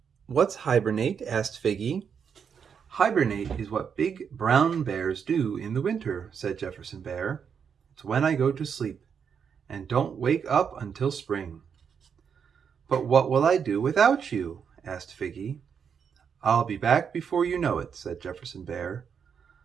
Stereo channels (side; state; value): left; quieter; 7.0 dB